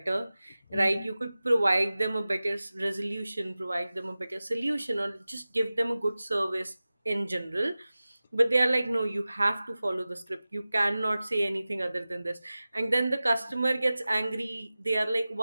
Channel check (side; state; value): both; inverted; correlation -0.97